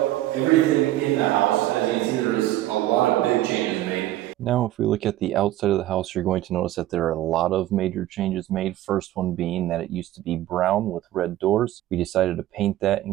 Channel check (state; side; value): quieter; left; 14.7 dB